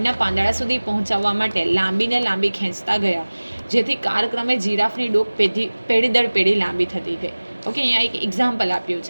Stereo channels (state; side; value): inverted; both; correlation -1.00